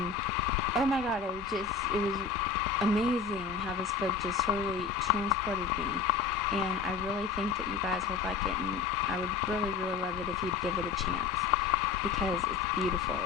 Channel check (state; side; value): quieter; right; 5.4 dB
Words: oh my god, it was amazing how this book just totally transported me. And I really think that you guys would like it, and I would really, really love it if you'd give it a chance, because it's beautiful,